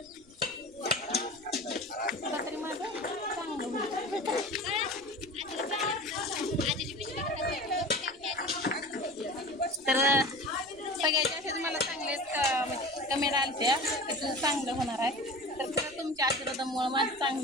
तरी माझं चांगलं होईल. तर सगळ्यात जास्त मला चांगलेच म्हणजे कमेंट आलत्या की तुझं चांगलं होणार आहे. तर खरं तुमच्या आशीर्वादामुळं माझं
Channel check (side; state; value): right; noise; rumble, 27 dB below the sound